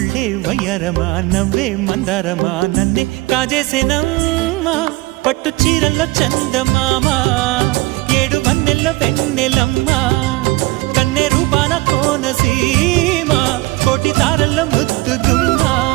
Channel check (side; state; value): left; quieter; 20.5 dB